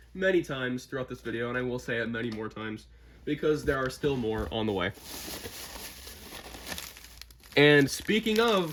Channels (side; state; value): both; identical; correlation 1.00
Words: many times throughout this video, and I will say it many more times because there are still more on the way. And speaking